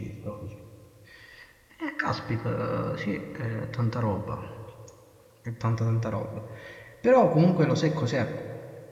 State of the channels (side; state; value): both; identical; correlation 1.00